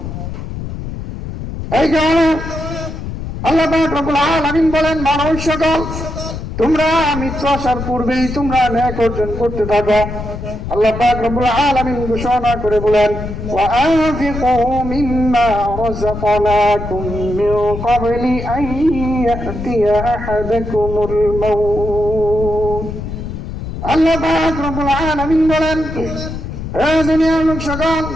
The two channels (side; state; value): left; noise; rumble, 7 dB below the sound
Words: এই কারণে আল্লাহ পাক রব্বুল আলামিন বলেন, মানব সকল তোমরা মৃত্যু আসার পূর্বেই তোমরা ন্যায় অর্জন করতে থাকো। আল্লাহ পাক রব্বুল আলামিন ঘোষণা করে বলেন, ওয়া আনফিকু মিম্মা রাযাকনাকুম মিন ক্বাবলি আন ইয়াতিয়া আহাদাকুমুল মাউত। আল্লাহ পাক রব্বুল আলামিন বলেন, হে দুনিয়ার লোক সকল,